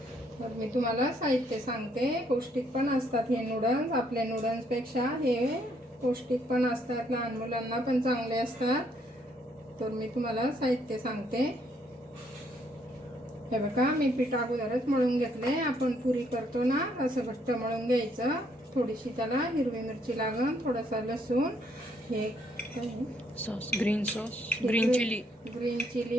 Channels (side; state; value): both; normal; correlation 0.70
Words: तर मी तुम्हाला साहित्य सांगते। पौष्टिक पण असतात हे नूडल्स, आपल्या नूडल्सपेक्षा हे पौष्टिक पण असतात, लहान मुलांना पण चांगले असतात। तर मी तुम्हाला साहित्य सांगते। हे बघा, मी पीठ अगोदरच मळून घेतले। आपण पुरी करतो ना, असं घट्ट मळून घ्यायचं। थोडीशी त्याला हिरवी मिरची लागेल, थोडासा लसूण, हे sauce, green chilli,